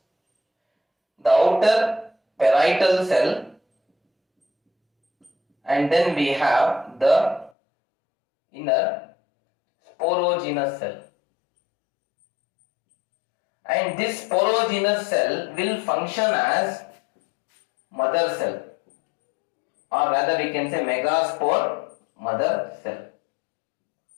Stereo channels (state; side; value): drops out; right; at 7.5 s